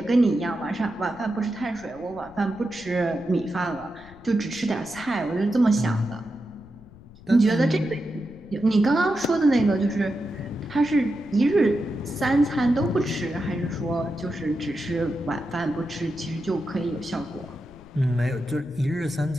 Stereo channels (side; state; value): left; noise; rumble, 21 dB below the sound